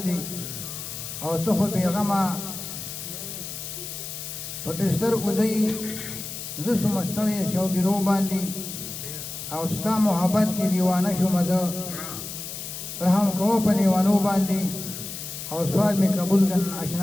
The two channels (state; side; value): noise; left; hiss, 8 dB below the sound